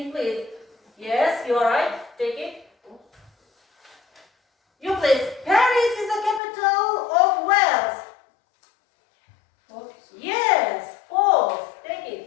please. Yes, you are right. Take it. You please. Paris is the capital of Wales. False. Yes, false. Take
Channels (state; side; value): drops out; right; at 6.4 s